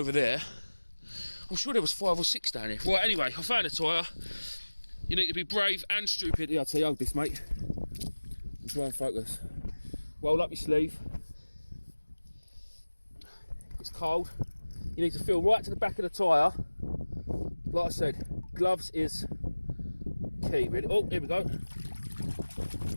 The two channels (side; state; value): both; inverted; correlation -1.00